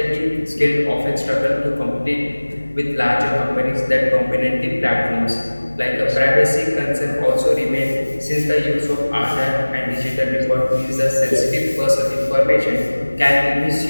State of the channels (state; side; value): inverted; both; correlation -1.00